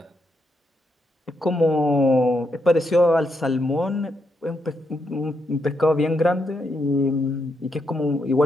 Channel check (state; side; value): normal; both; correlation 0.80